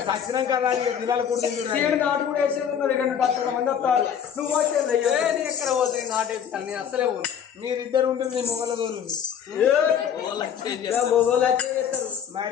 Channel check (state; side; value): quieter; right; 8.3 dB